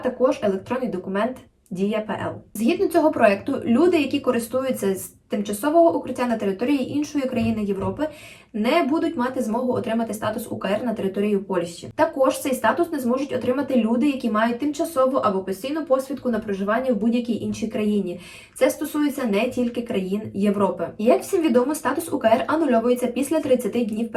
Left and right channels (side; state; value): both; identical; correlation 1.00